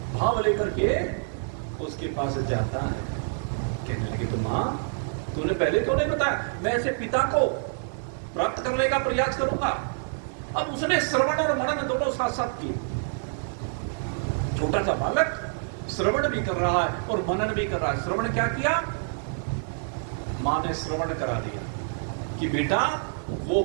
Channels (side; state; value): left; silent; 60 dB below the other